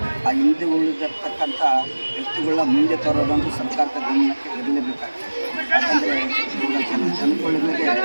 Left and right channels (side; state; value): both; inverted; correlation -1.00